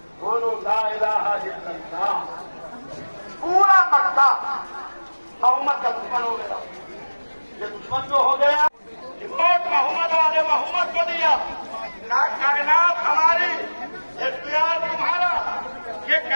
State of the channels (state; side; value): inverted; both; correlation -1.00